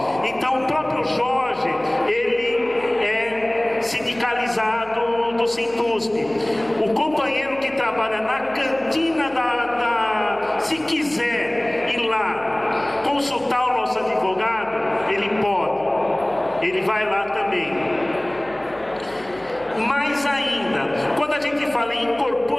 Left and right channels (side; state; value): left; noise; hum, 25 dB below the sound